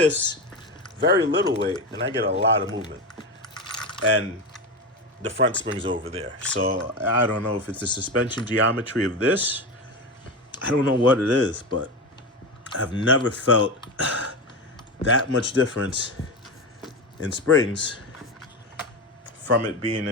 very little weight, and I get a lot of movement. And the front spring's over there. So I don't know if it's the suspension geometry of this. I don't know what it is, but I've never felt that much difference in springs from it being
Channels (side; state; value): both; normal; correlation 0.19